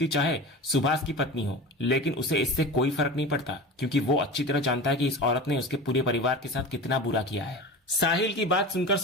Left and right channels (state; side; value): normal; both; correlation 0.31